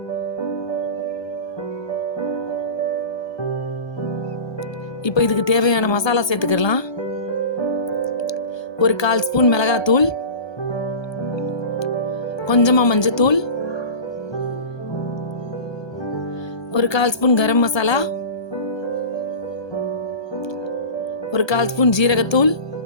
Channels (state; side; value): late; right; 1.3 ms